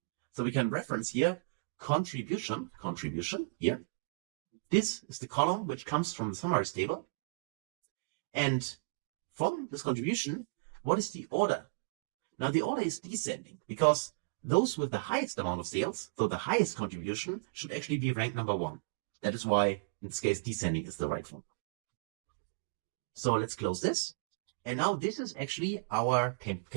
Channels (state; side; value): quieter; left; 33.1 dB